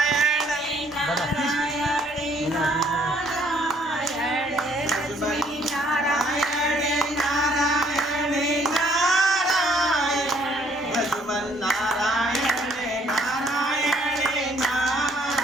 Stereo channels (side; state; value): both; normal; correlation 0.64